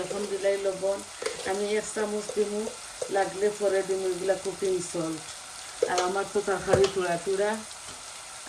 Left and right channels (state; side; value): identical; both; correlation 1.00